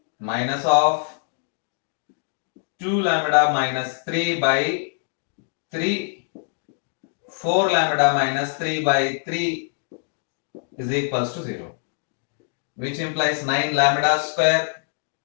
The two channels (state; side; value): silent; right; digital silence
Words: minus of 2 lambda minus 3 by 3 4 lambda minus 3 by 3 is equals to 0, which implies 9 lambda square